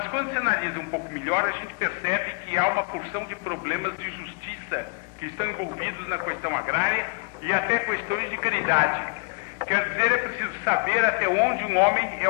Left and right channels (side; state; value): right; quieter; 32.7 dB